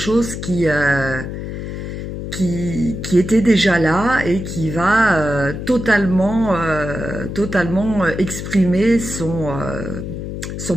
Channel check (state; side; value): noise; left; hum, 7 dB below the sound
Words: qui était déjà là et qui va totalement exprimer son